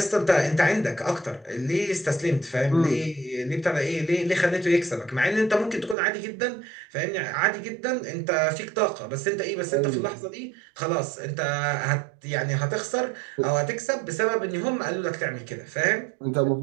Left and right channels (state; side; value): drops out; left; at 6.0 s